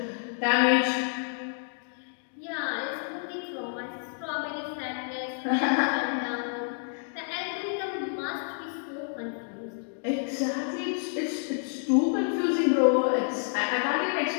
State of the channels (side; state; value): right; silent; 59 dB below the other